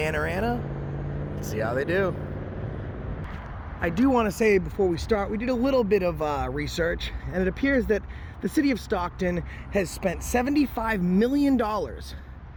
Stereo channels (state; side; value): identical; both; correlation 1.00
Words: Let's see how they do. I do want to say before we start, we did a little bit of research, and it appears that the city of Stockton has spent $75 million